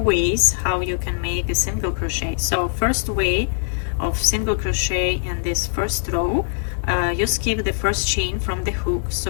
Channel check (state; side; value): silent; right; 64 dB below the other